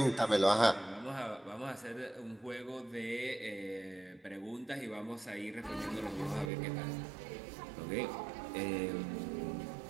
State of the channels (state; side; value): drops out; left; at 6.5 s